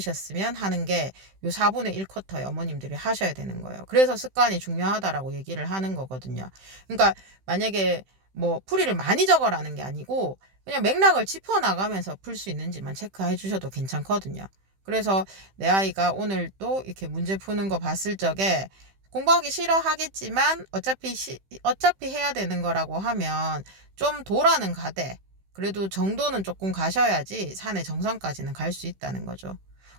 하는 게 요 4분의 1 쿼터에 어머님들이 하셔야 되는 거예요. 그래서 습관이 중요하다라고 얘기를 하는 거거든요. 그러니까 만약에 뭐 풀이를 많이 적어라는 게 아니고 그냥 맥락을 짚어나가면서 풀 수 있는지만 체크해 주셔도 괜찮거든요. 그래서 내 아이가 오늘 또 이렇게 문제 푸는 거 봤을 적에 공부하기 싫어하겠지만 어차피 해야 되는 거라고 하면 좀 도라는 가되 그래도 정도는 조금 가셔야지 산의 정상까지는 갈 수 있다는 거죠.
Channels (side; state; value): left; late; 15 ms